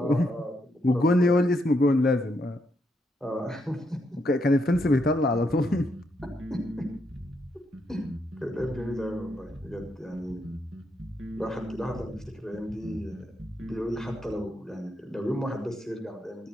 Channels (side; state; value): both; normal; correlation 0.78